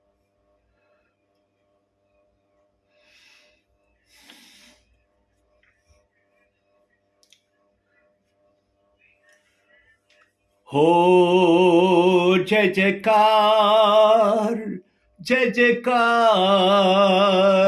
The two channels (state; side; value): identical; both; correlation 1.00